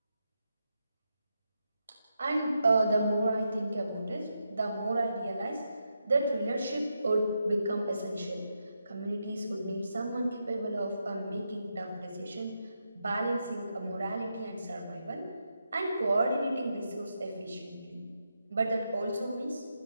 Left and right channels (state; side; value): inverted; both; correlation -0.85